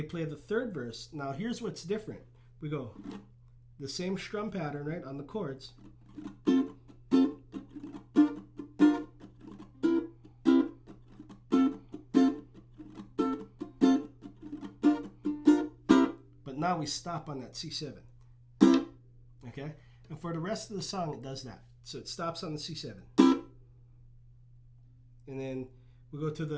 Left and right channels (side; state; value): both; identical; correlation 1.00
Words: play the 3rd verse. Now here's what's different. We go the same strum pattern, right, on the chords. But now we stop on that C7. Okay? And for the rest of the song, it does that. So it stops on the C7. And then we go to